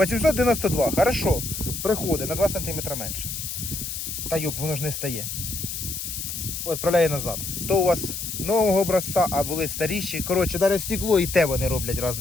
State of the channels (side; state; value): left; noise; hiss, 5 dB below the sound